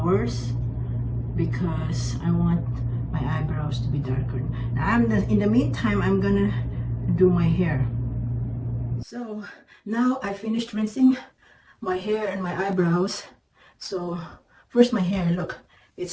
because I want my eyebrows to be darker. Now in the meantime I'm gonna do my hair. So now I finished rinsing my hair and my eyebrows. So first my hair, look,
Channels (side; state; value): both; identical; correlation 1.00